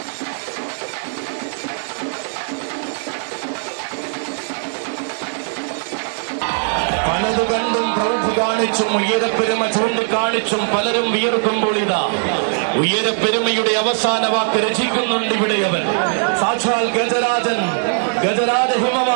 പലതു കണ്ടും പ്രൗഢി കാണിച്ചും ഉയരപ്പെരുമ ചൂണ്ടിക്കാണിച്ചും പലരും വിയർക്കുമ്പോൾ ഇതാ ഉയരപ്പെരുമയുടെ അവസാന വാക്ക് രചിക്കുന്നുണ്ട് ഇവിടെ അവൻ. സാക്ഷാൽ ഗജരാജ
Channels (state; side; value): silent; left; 65 dB below the other